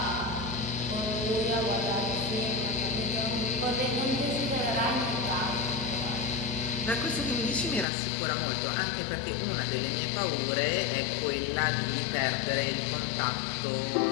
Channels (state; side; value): drops out; right; at 7.9 s